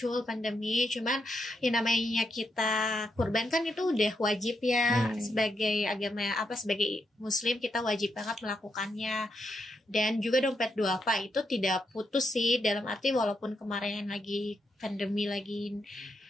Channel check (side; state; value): both; normal; correlation 0.82